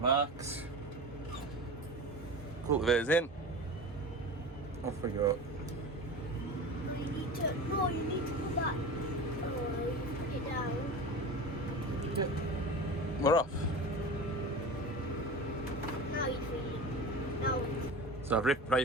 Cultivator's in. Off we go. You need to put that. Put it down. We're off. Now you're free. Now. So I've ripped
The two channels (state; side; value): normal; both; correlation 0.31